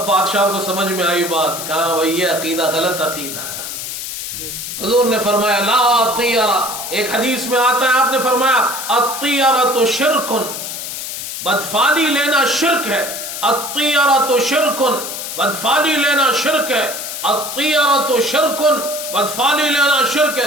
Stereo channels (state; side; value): noise; left; hiss, 7 dB below the sound